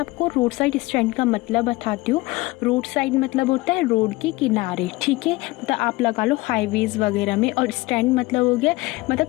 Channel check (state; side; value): quieter; right; 21.1 dB